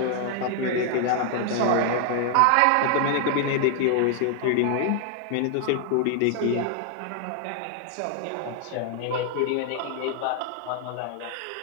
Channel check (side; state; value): both; different; correlation 0.00